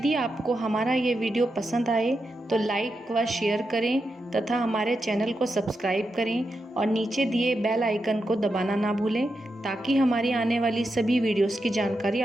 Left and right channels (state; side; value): normal; both; correlation 0.87